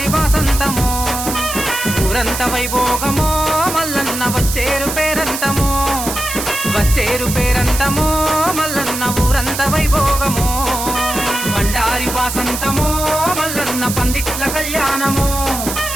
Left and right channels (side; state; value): right; noise; hiss, 5 dB below the sound